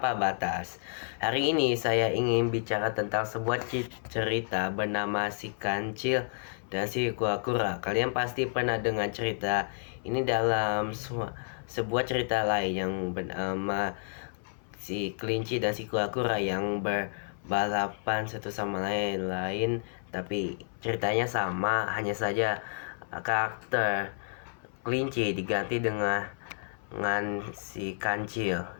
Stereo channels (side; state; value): right; silent; 57 dB below the other